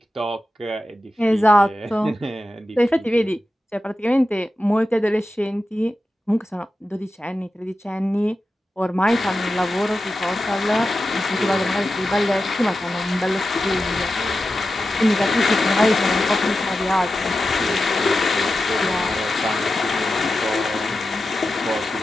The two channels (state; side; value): normal; both; correlation 0.92